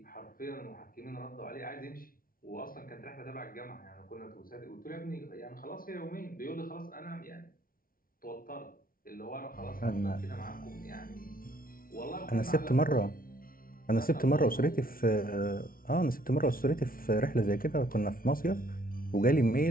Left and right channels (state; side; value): late; right; 0.42 ms